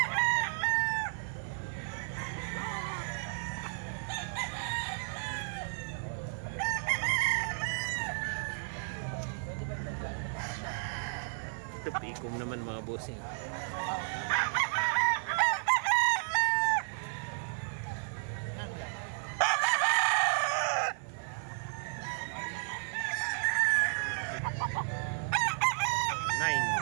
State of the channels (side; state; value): left; silent; 56 dB below the other